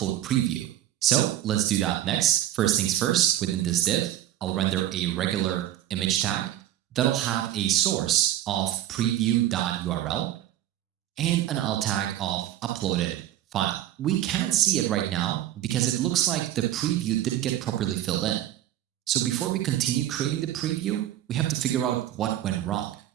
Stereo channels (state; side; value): quieter; left; 12.6 dB